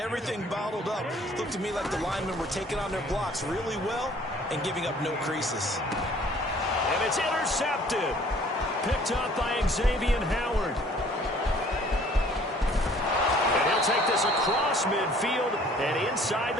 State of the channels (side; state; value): both; normal; correlation 0.55